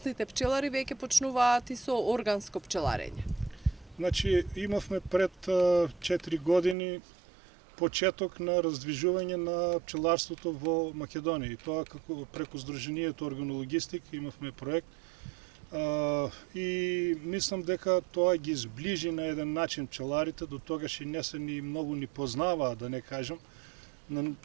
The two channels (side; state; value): left; drops out; at 6.8 s